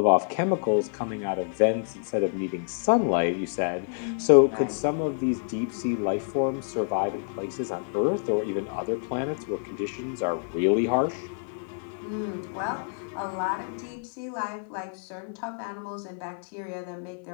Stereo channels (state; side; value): silent; right; 60 dB below the other